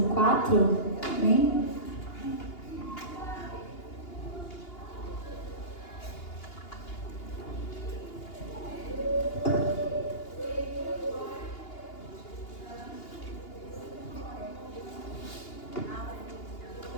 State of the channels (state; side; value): late; right; 2.8 ms